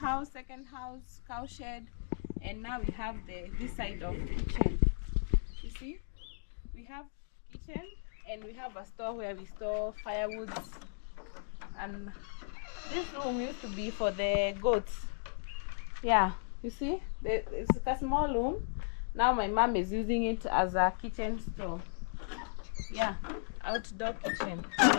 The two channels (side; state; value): right; silent; digital silence